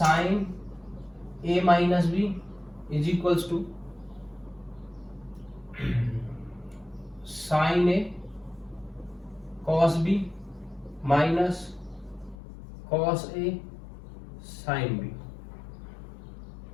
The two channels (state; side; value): drops out; right; at 12.4 s